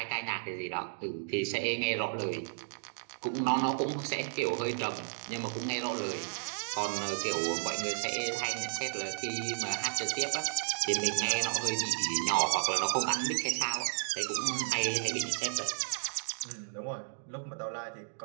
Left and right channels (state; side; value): silent; left; digital silence